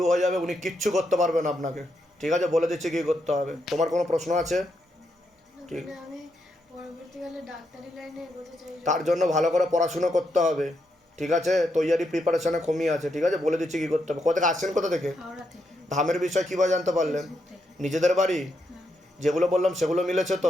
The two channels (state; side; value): normal; both; correlation 0.81